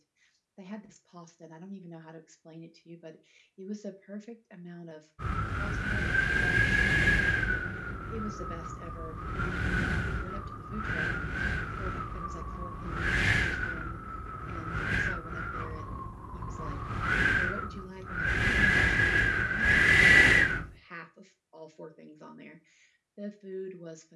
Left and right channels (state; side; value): identical; both; correlation 1.00